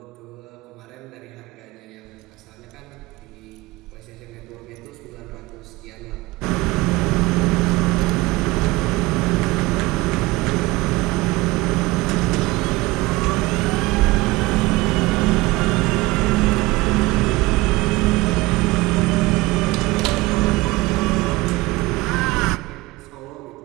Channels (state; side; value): quieter; left; 20.5 dB